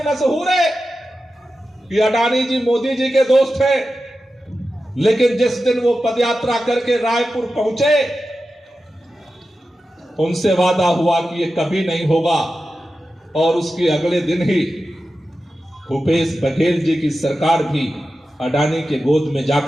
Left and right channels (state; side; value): normal; both; correlation 0.92